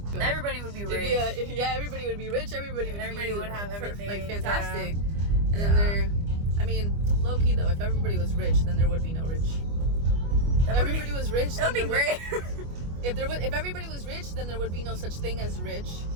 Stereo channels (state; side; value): late; left; 25 ms